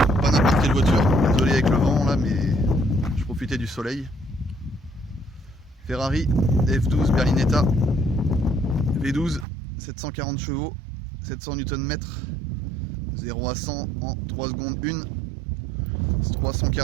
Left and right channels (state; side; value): drops out; left; at 9.5 s